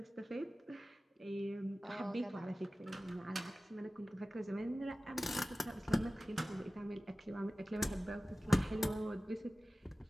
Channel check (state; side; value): normal; both; correlation 0.97